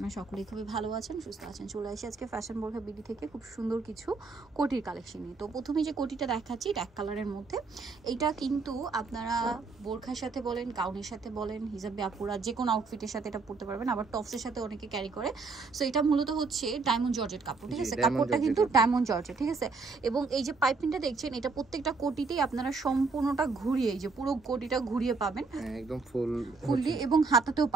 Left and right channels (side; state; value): left; quieter; 4.3 dB